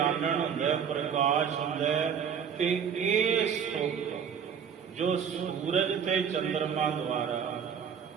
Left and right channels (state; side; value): quieter; left; 7.5 dB